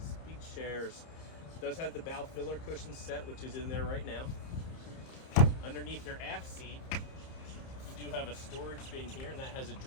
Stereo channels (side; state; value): right; late; 30 ms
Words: beach chairs. It does have the bow filler cushion set, which is in there right now. Underneath your aft seat, you do have a storage bin here, and that has a